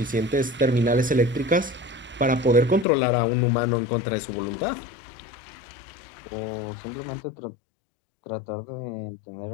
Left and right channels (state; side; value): drops out; right; at 2.9 s